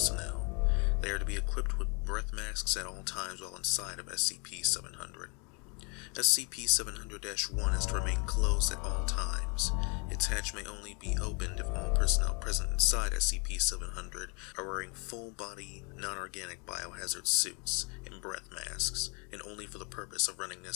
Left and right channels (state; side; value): quieter; right; 32.8 dB